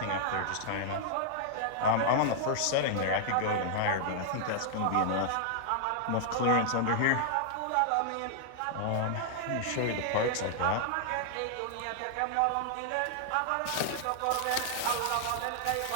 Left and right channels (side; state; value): both; different; correlation -0.01